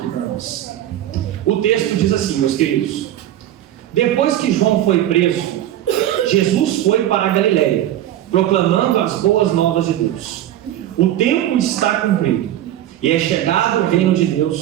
para nós. O texto diz assim, meus queridos: depois que João foi preso, Jesus foi para a Galileia, proclamando as boas novas de Deus. O tempo está cumprido, e é chegado o reino de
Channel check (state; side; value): quieter; left; 12.5 dB